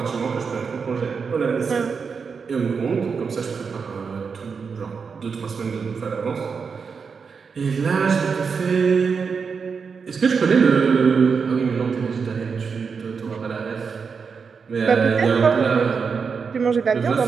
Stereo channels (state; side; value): quieter; left; 5.6 dB